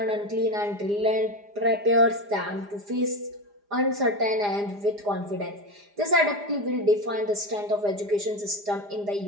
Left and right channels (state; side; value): late; left; 4.9 ms